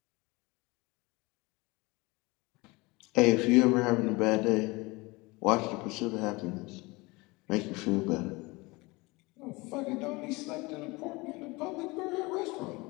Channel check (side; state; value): right; quieter; 23.9 dB